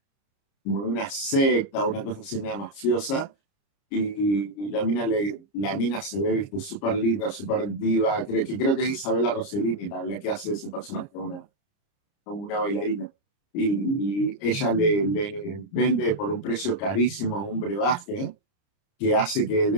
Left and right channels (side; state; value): right; late; 30 ms